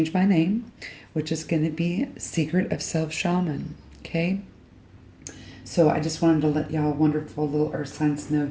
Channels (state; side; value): identical; both; correlation 1.00